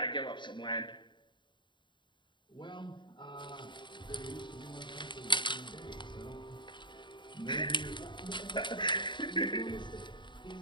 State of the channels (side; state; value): right; late; 0.23 ms